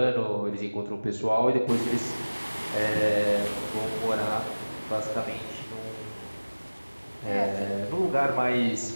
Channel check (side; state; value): both; inverted; correlation -1.00